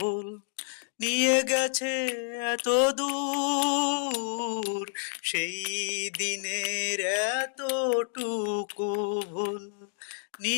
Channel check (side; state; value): right; silent; digital silence